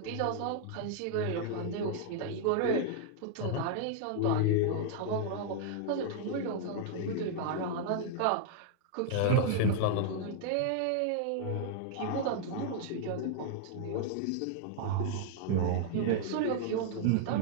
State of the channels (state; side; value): different; both; correlation -0.01